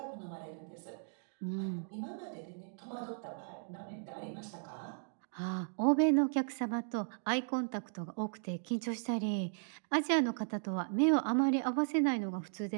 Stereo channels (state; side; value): silent; left; digital silence